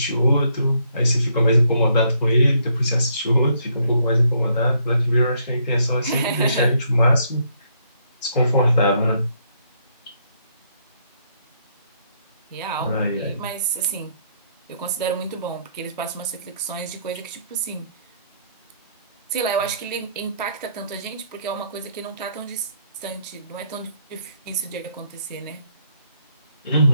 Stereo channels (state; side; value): inverted; both; correlation -0.70